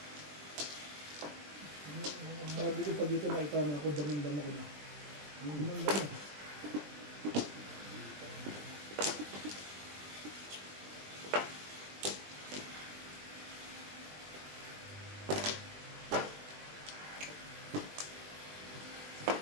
Sabi ko pag ito naitama ako, damang-dama ko na. Damang-dama.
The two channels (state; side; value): late; left; 20 ms